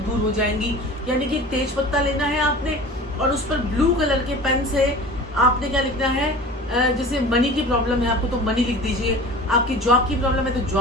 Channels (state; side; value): normal; both; correlation 0.39